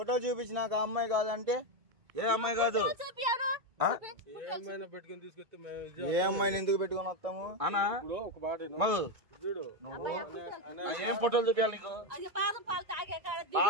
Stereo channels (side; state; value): left; late; 2.3 ms